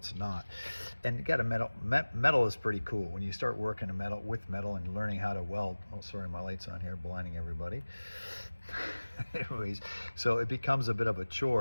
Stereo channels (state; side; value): inverted; both; correlation -1.00